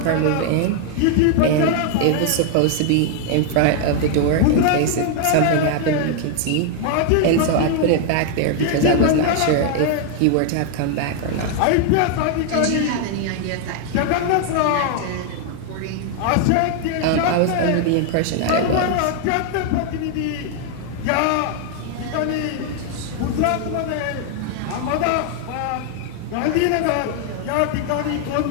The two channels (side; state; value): both; different; correlation 0.00